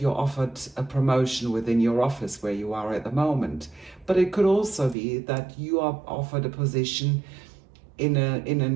you're offered a promotion within your office where you are at the moment. But it could also be that you are offered a position in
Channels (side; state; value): left; drops out; at 5.0 s